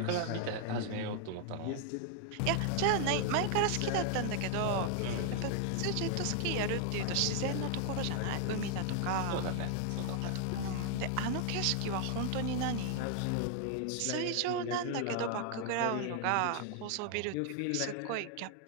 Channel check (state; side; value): different; both; correlation 0.00